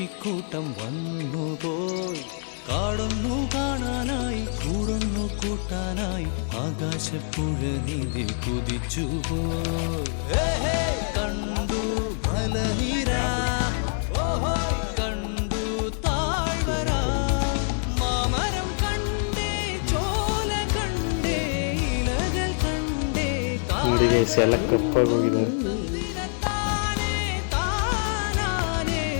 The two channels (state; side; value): silent; right; 61 dB below the other